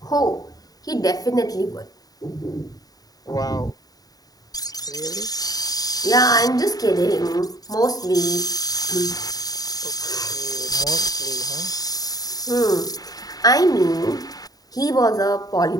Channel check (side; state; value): right; late; 0.18 ms